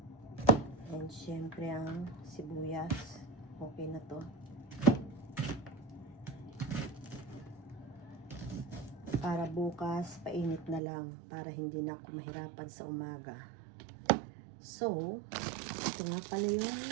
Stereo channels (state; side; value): drops out; left; at 10.8 s